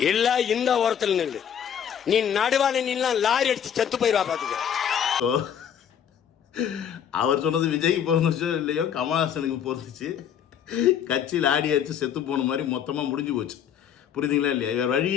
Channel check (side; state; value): right; quieter; 8.7 dB